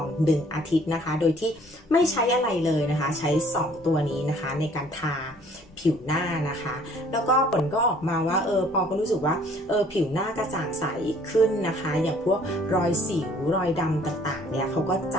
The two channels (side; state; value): both; normal; correlation 0.57